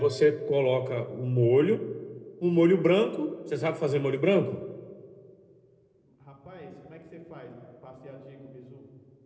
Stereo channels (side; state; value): both; identical; correlation 1.00